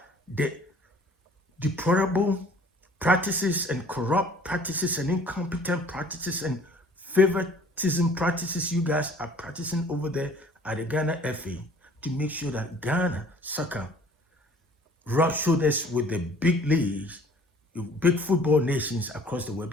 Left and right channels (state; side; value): normal; both; correlation 0.52